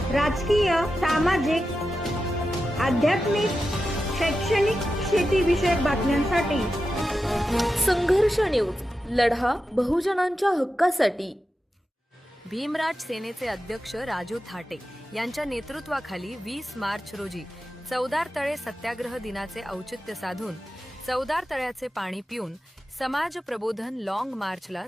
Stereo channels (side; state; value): both; normal; correlation 0.91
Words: राजकीय, सामाजिक, आध्यात्मिक, शैक्षणिक, शेतीविषयक बातम्यांसाठी संघर्ष न्यूज, लढा बहुजनांच्या हक्कासाठी. भीमराज सेनेचे अध्यक्ष राजू थाटे यांच्या नेतृत्वाखाली 20 मार्च रोजी चौदार तळे सत्याग्रह दिनाचे औचित्य साधून चौदार तळ्याचे पाणी पिऊन समाज प्रबोधन लॉंग मार्चला